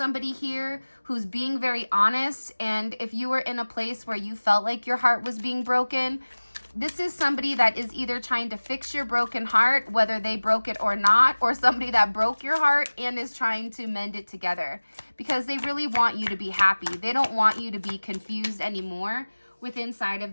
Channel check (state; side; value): inverted; both; correlation -1.00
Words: here who's being very honest. And if you were in a place where you felt like your heart was being broken, this is somebody that is either trying to fix your broken heart, whether they broke it or not, or somebody that broke your heart and is trying to mend it together because they really want you to be happy. They don't want you to be confused anymore with inside of